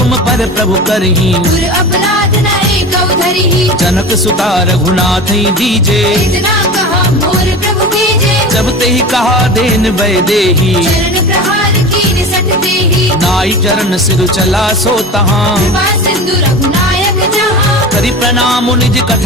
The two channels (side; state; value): both; normal; correlation 0.31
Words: पर प्रभु करही, गुर अपराध न एकौ धरिहि। जनक सुता रघुनाथ दीजे। इतना कहा मोर प्रभु कीजे। जब ते ही कहा देन वै देही, चरण प्रहार कीन सठ देहि। नाई चरण सिर चला सो तहाँ, कृपा सिंधु रघुनायक जहाँ। करि प्रणाम निज